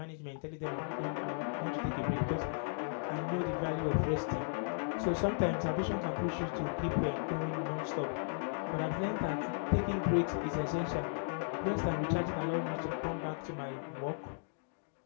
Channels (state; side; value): silent; right; digital silence